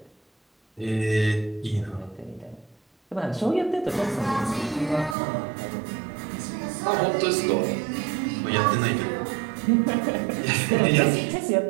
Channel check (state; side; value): drops out; left; at 5.2 s